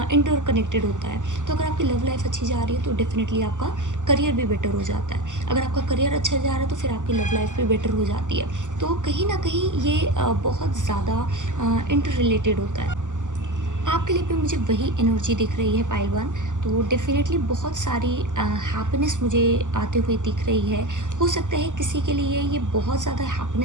इंटर कनेक्टेड होता है। तो अगर आपकी लव लाइफ अच्छी जा रही है तो डेफिनेटली आपका करियर भी बेटर हो जाता है। अगर आपका करियर अच्छा जा रहा है तो फिर आपकी लव लाइफ भी बेटर हो जाती है। तो कहीं ना कहीं ये बहुत ज़्यादा इंटर रिलेटेड होता है। आपके लिए भी मुझे वही एनर्जी दिख रही है पाइलवान। तो डेफिनेटली बहुत सारी हैप्पीनेस मुझे आते हुए दिख रही है। हो सकता है किसी के लिए ये बहुत ज़्यादा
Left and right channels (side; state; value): left; late; 0.86 ms